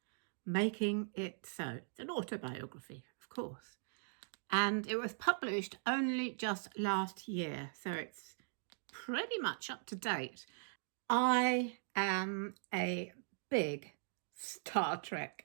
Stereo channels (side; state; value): left; silent; digital silence